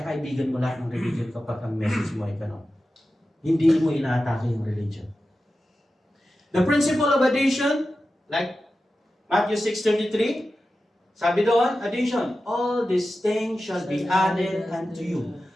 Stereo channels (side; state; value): both; normal; correlation 0.93